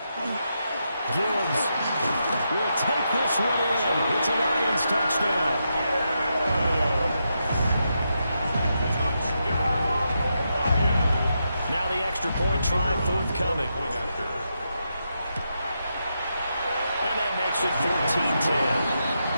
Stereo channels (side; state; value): both; inverted; correlation -0.84